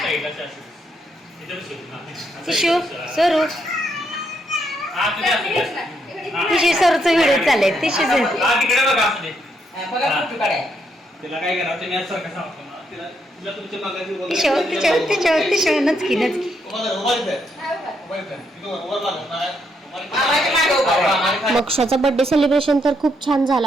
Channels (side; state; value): both; normal; correlation 0.76